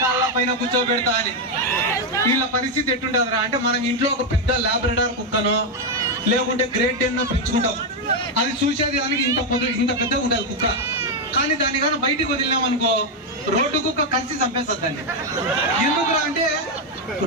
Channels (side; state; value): both; normal; correlation 0.03